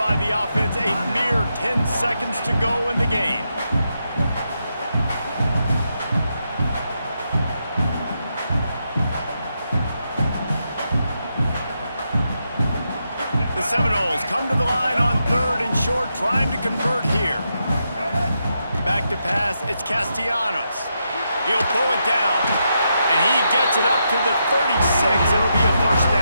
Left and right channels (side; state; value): both; inverted; correlation -0.83